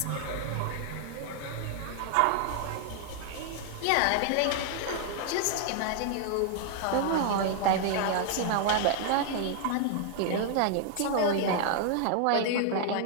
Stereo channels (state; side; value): different; both; correlation 0.00